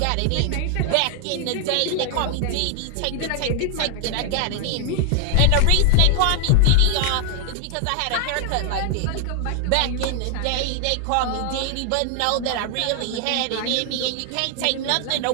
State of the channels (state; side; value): different; both; correlation 0.00